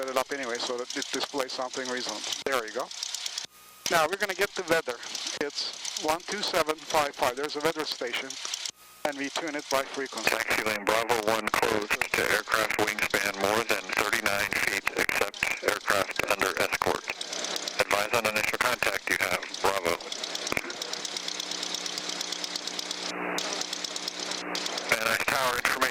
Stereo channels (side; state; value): both; identical; correlation 1.00